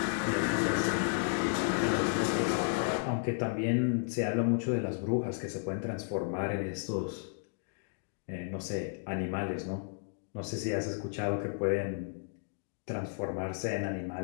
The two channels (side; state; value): right; silent; digital silence